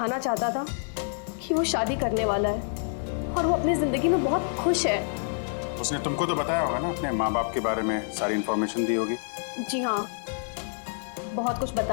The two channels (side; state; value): right; silent; digital silence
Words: चाहता था कि वो शादी करने वाला है और वो अपनी जिंदगी में बहुत खुश है। उसने तुमको तो बताया होगा ना अपने माँ बाप के बारे में, सारी इन्फॉर्मेशन दी होगी। जी हाँ, बहुत कुछ